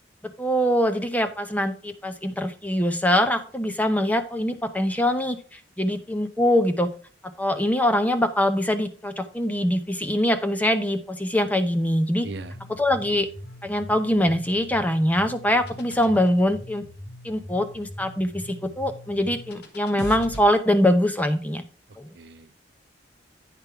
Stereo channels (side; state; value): both; normal; correlation 0.76